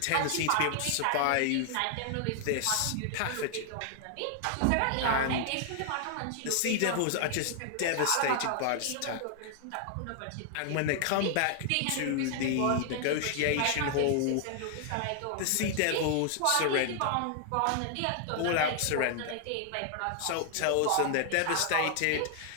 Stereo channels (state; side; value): different; both; correlation 0.00